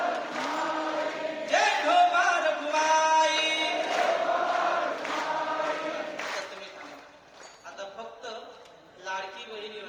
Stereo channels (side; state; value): both; identical; correlation 1.00